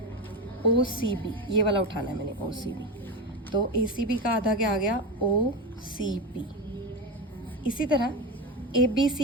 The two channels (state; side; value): normal; both; correlation 0.18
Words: ओ सी बी, ये वाला उठाना है मैंने, ओ सी बी। तो ए सी बी का आधा क्या आ गया, ओ सी बी। इसी तरह ए बी